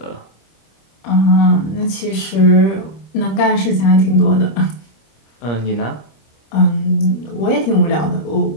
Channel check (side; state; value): right; late; 26 ms